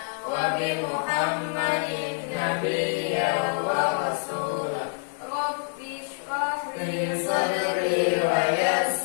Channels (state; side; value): silent; right; digital silence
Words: wa bi Muhammadin nabiyya wa rasulah. Rabbi shrah Li sadri wa